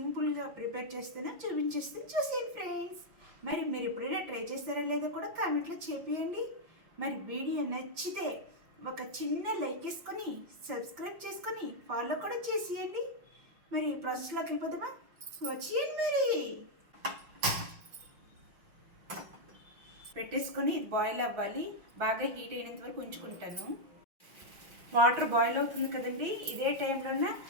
ప్రిపేర్ చేస్తానో చూపించేస్తాను, చూసేయండి ఫ్రెండ్స్. మరి మీరు ఎప్పుడైనా ట్రై చేస్తారా లేదో కూడా కామెంట్లో చెప్పేయండి. మరి వీడియో నచ్చితే ఒక చిన్న లైక్ వేసుకొని సబ్స్క్రైబ్ చేసుకొని ఫాలో కూడా చేసేయండి. మరి ప్రాసెస్లోకి వెళ్ళిపోదామా? వచ్చేయండి. మరి పెట్టేసుకొని ఇది బాయిల్ అవ్వాలి. బాగా హీట్ అయినంత వరకు ఉంచుకుంటాను. వాటర్ బాయిల్ అవుతుంది కదండి, ఇదే టైంలోనే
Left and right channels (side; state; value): left; late; 6.0 ms